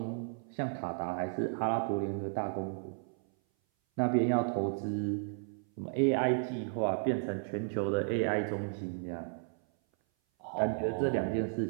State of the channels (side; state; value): left; silent; 55 dB below the other